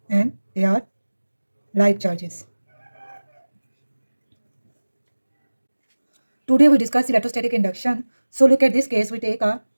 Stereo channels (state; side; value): inverted; both; correlation -1.00